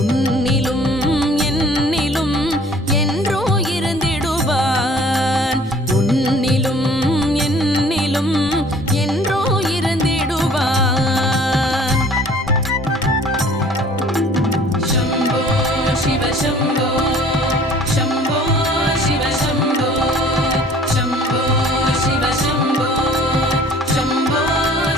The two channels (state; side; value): normal; both; correlation 0.52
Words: என்னிலும் என்றோ இருந்திடுவான் உன்னிலும் என்னிலும் என்றோ இருந்திடுவான் शम्भो शिव शम्भो शम्भो शिव शम्भो शम्भो शिव शम्भो शम्भो